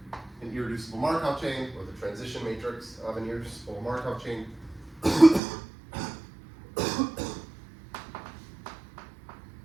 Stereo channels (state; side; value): drops out; left; at 5.4 s